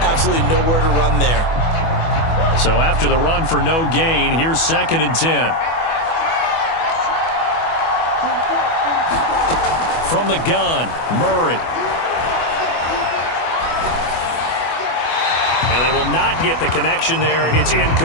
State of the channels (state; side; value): late; right; 24 ms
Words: Absolutely nowhere to run there. So after the run for no gain, here's 2nd and 10. From the gun, Murray. And they will not get the connection there. It's